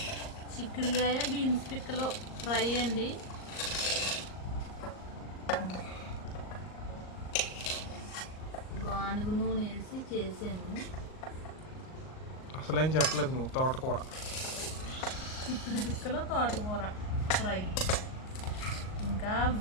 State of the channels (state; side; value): late; right; 38 ms